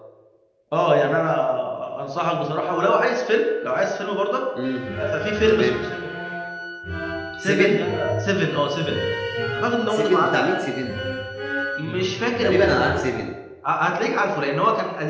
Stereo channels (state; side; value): identical; both; correlation 1.00